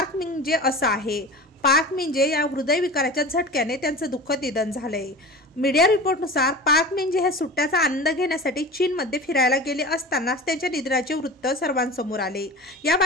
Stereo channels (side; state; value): both; normal; correlation 0.34